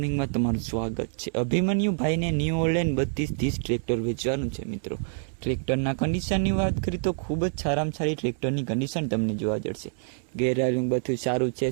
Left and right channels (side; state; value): left; silent; 60 dB below the other